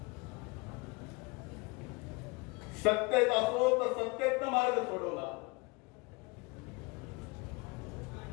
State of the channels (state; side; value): quieter; right; 27.2 dB